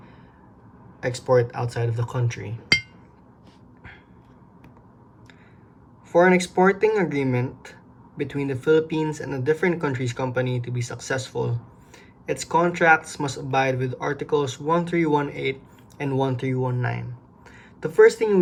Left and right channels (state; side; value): identical; both; correlation 1.00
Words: export outside of the country. For an exporting agreement between the Philippines and a different country's company to be successful, its contracts must abide with Articles 1318 and 1319. The first thing